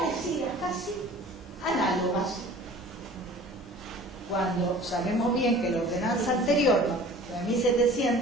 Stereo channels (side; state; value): both; normal; correlation 0.45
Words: casi análogas. Cuando sabemos bien que la ordenanza anterior, la de